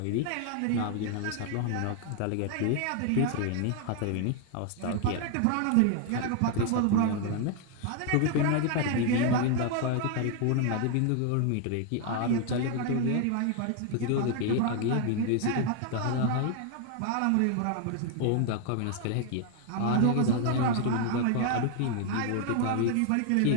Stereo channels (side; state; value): both; different; correlation 0.01